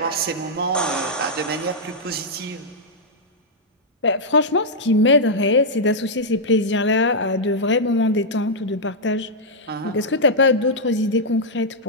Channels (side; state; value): both; normal; correlation -0.06